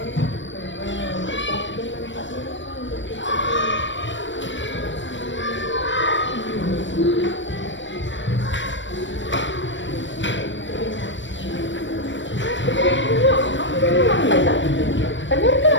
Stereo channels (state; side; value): late; right; 0.54 ms